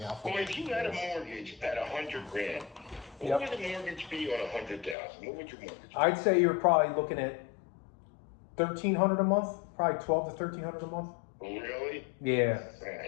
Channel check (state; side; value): drops out; right; at 5.0 s